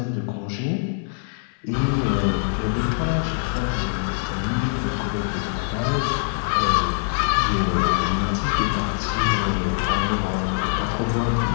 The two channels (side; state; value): right; silent; digital silence